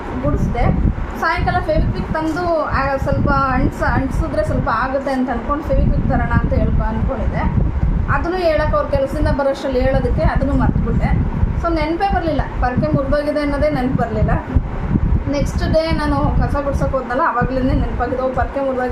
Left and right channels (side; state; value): both; identical; correlation 1.00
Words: ಗುಡಿಸ್ದೆ. ಸಾಯಂಕಾಲ ಫೆವಿಕ್ವಿಕ್ ತಂದು ಸ್ವಲ್ಪ ಅಂಟಿಸಿದ್ರೆ ಸ್ವಲ್ಪ ಆಗುತ್ತೆ ಅಂತ ಅಂದ್ಕೊಂಡು ಫೆವಿಕ್ವಿಕ್ ತರೋಣ ಅಂತ ಅಂದ್ಕೊಂಡಿದ್ದೆ. ಅದನ್ನು ಹೇಳೋಕೆ ಅವ್ರ ಕೆಲಸದಿಂದ ಬರೋಷ್ಟರಲ್ಲಿ ಹೇಳೋದಕ್ಕೆ ಅದನ್ನು ಮರ್ತ್ಬಿಟ್ಟೆ. ಸೊ ನೆನಪೇ ಬರಲಿಲ್ಲ, ಪೊರ್ಕೆ ಮುರಿದೋಗಿದೆ ಅನ್ನೋದೇ ನೆನಪು ಬರಲಿಲ್ಲ. ನೆಕ್ಸ್ಟ್ ಡೇ ನಾನು ಕಸ ಗುಡ್ಸೋಕೆ ಹೋದ್ನಲ್ಲ, ಆವಾಗಲೇ ನೆನಪಾಗಿದೆ, ಪೊರ್ಕೆ